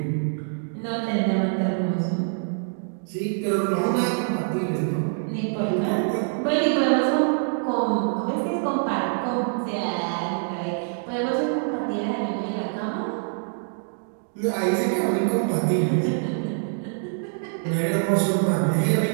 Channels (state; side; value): silent; left; digital silence